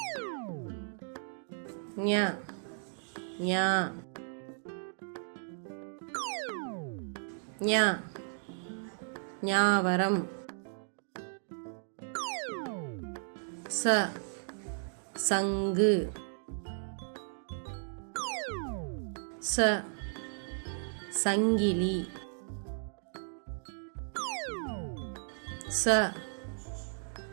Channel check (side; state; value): left; silent; digital silence